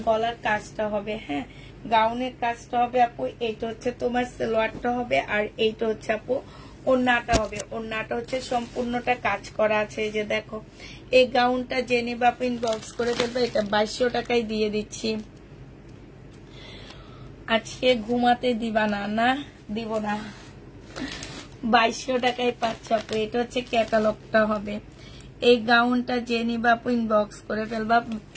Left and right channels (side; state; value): both; identical; correlation 1.00